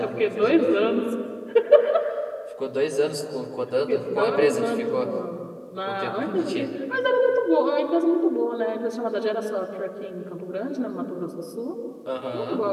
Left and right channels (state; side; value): identical; both; correlation 1.00